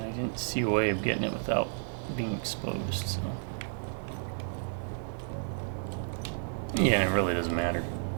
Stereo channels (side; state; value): left; silent; digital silence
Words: I didn't see a way of getting it without being exposed, so... Yeah, it really doesn't matter